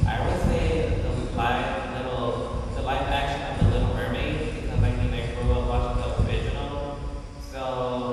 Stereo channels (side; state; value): both; identical; correlation 1.00